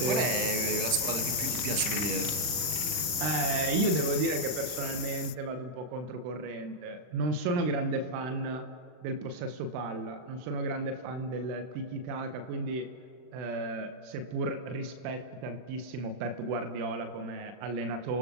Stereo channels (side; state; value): left; late; 39 ms